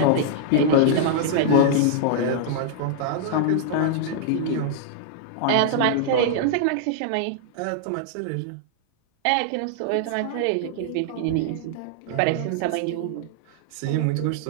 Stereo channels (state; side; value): different; both; correlation -0.01